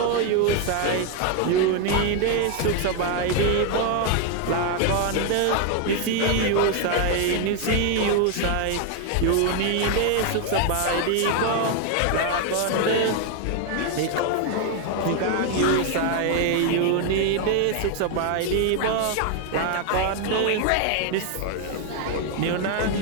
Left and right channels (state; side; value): different; both; correlation 0.01